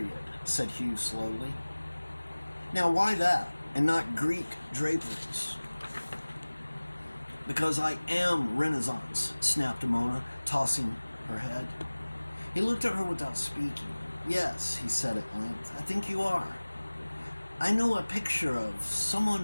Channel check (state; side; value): inverted; both; correlation -1.00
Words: said Hugh slowly. "Now why that, and not Greek draperies?" "Because I am Renaissance," snapped Mona, tossing her head. He looked at her without speaking. "Yes," he said at length, "I think you are. I know a picture of